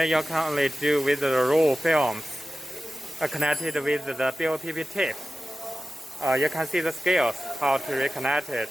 you can only do with the raw films connected with the BOPP tape. You can see the scales, how to reconnect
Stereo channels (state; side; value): normal; both; correlation 0.95